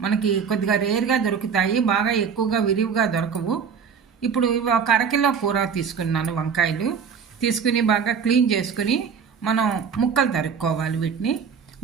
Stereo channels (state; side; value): quieter; left; 6.6 dB